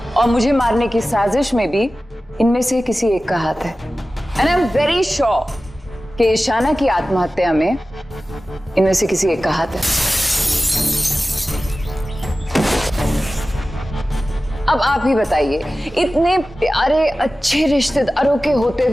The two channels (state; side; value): normal; both; correlation 0.96